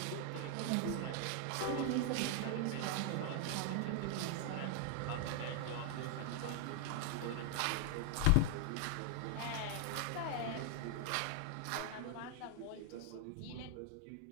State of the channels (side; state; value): both; different; correlation 0.00